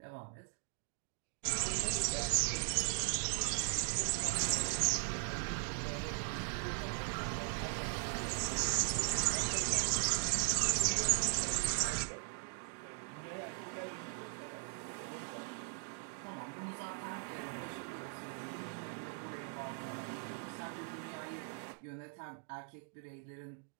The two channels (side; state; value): left; silent; 52 dB below the other